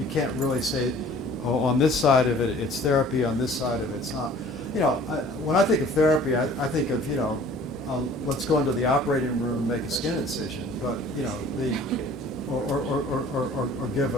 can't really say, oh, on this side of it it's therapy, on this side of it it's not. When I think of therapy, I think of let's go into the operating room and make a skin incision, but or give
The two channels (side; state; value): both; normal; correlation 0.50